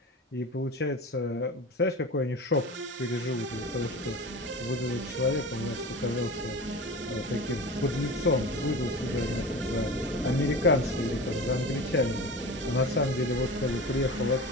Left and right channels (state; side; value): normal; both; correlation 0.32